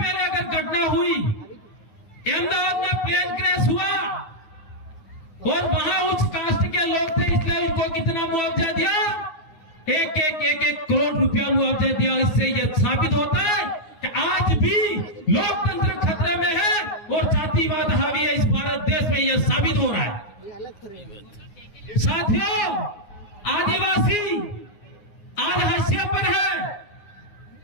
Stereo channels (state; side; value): late; right; 9.6 ms